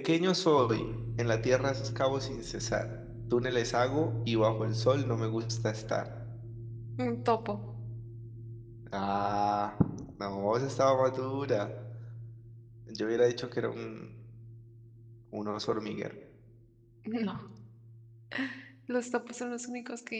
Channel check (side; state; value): both; identical; correlation 1.00